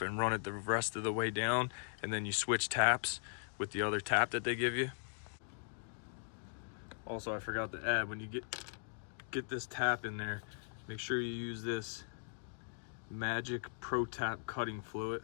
and run it the rest of the way down, and then you switch taps with the other tap that they give you. Also, I forgot to add, when you get this tap in there, make sure you use this Magic Pro Tap cutting fluid.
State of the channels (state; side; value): silent; right; digital silence